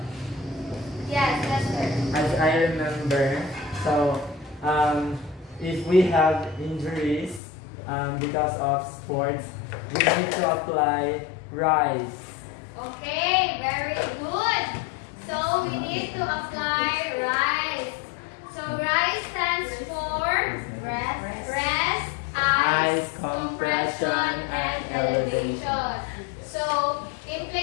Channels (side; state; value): right; drops out; at 7.4 s